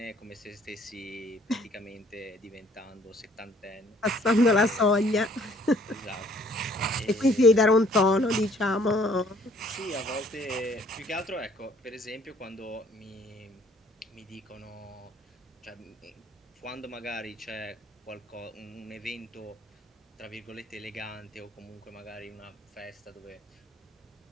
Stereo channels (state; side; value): normal; both; correlation 0.60